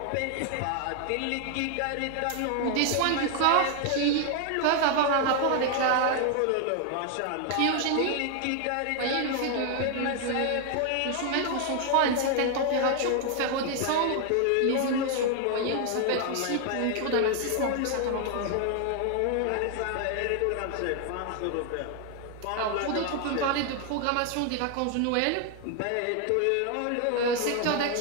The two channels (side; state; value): both; different; correlation 0.00